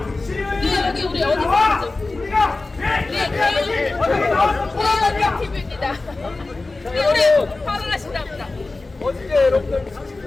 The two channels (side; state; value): right; quieter; 3.4 dB